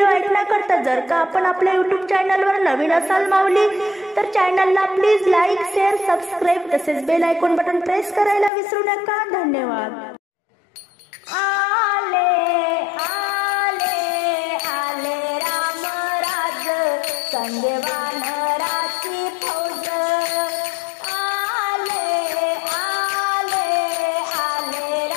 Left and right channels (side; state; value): right; drops out; at 8.5 s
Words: ऐकण्याकरता जर का आपण आपल्या यूट्यूब चॅनलवर नवीन असाल माऊली तर चॅनलला प्लीज लाईक शेअर सबस्क्राईब तसेच बेल आयकॉन बटन प्रेस करायला विसरू नका। धन्यवाद। आले आले आले राम राज संगे वानराची फौज आले आले आले